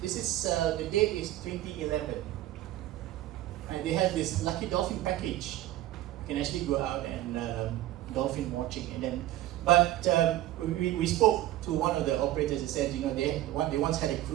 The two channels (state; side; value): quieter; left; 14.8 dB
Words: This is the date is 2011, and they have this lucky dolphin package. You can actually go out and dolphin watching, and then. But we spoke to one of the operators. They said, they once had a